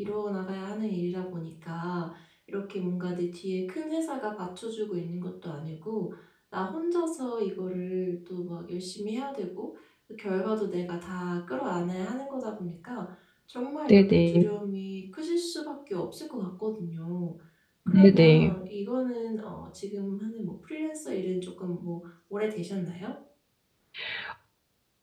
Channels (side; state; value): both; identical; correlation 1.00